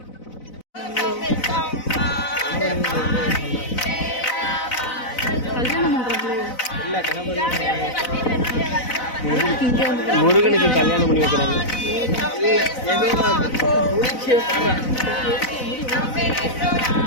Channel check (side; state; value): right; late; 4.0 ms